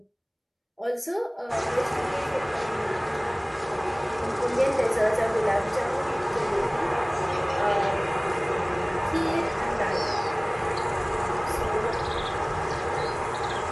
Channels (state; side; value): identical; both; correlation 1.00